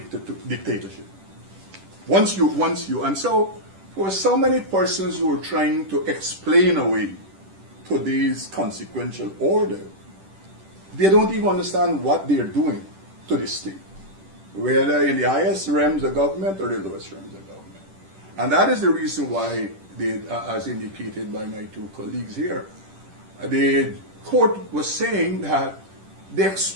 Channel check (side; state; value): left; late; 10 ms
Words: And so for so many persons who are trying to explain away today's consequential order, they don't even understand what they're doing to the state, whether in the highest realms of government or the lowest realms of government. And that is the reason why, as indicated by my two colleagues here, the court was saying that they